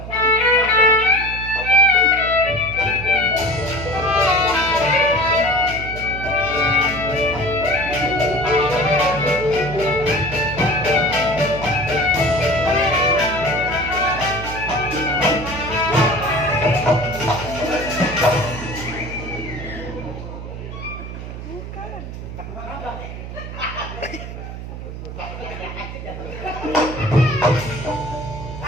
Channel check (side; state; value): right; noise; hum, 9 dB below the sound